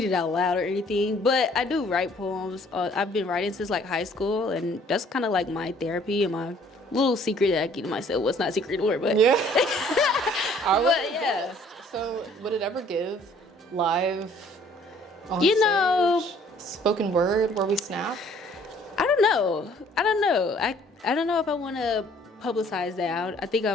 it out loud or anything, but I do write poems. I've been writing since like high school, and that's kind of like my therapy and my little secret that I keep to myself. Well, it's not a secret anymore, but yeah. But yeah. So would it ever give live on You stage, know, spoken word where we snap? I don't know. I don't know if I want to publicize that. I think I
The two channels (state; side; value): normal; both; correlation 0.58